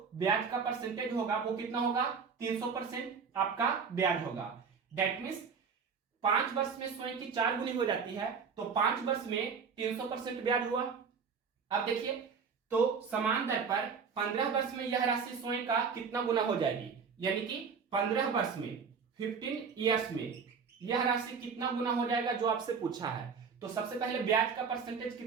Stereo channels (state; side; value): quieter; left; 5.8 dB